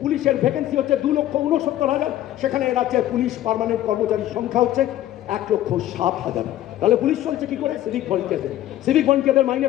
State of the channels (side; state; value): right; quieter; 13.5 dB